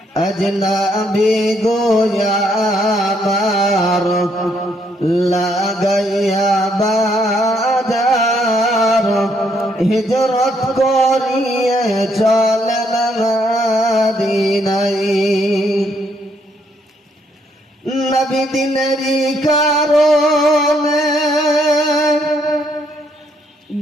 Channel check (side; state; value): both; normal; correlation 0.72